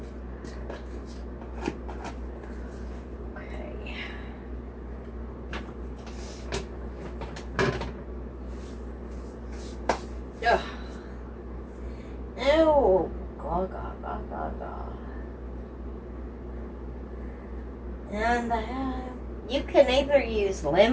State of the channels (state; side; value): identical; both; correlation 1.00